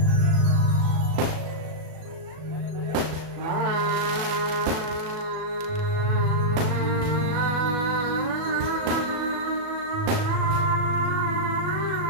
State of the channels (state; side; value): late; left; 37 ms